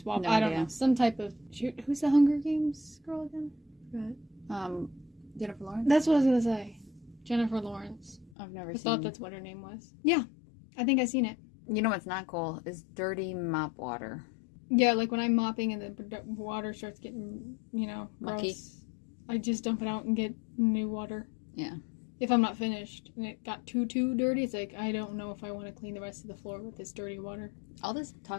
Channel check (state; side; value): drops out; right; at 8.3 s